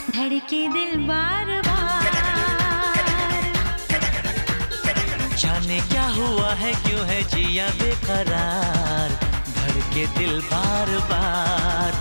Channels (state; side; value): inverted; both; correlation -1.00